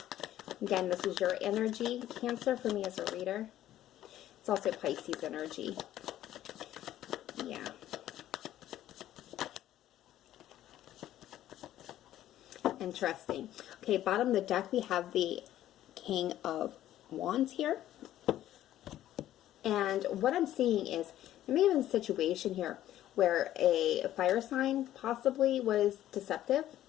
Again, this is your energy, Cancer, for me as a reader. It's also Pisces energy. Yeah. Interesting. Okay, bottom of the deck, we have the King of Wands here. And what I'm seeing is there may have been a situation here where a fire sign possibly was deceptive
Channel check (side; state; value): right; quieter; 12.9 dB